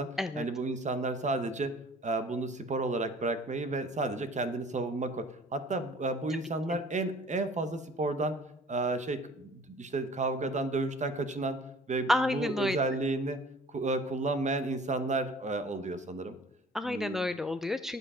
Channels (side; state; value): both; normal; correlation 0.50